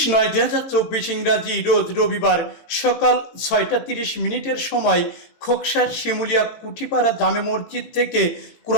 ইংরাজি রোজ রবিবার সকাল 6টা 30 মিনিটের সময় খোকসার শিমুলিয়া কুঠিপাড়া জামে মসজিদ থেকে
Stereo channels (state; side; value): late; right; 18 ms